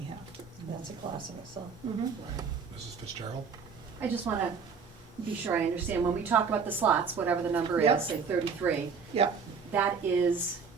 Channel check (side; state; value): left; quieter; 5.7 dB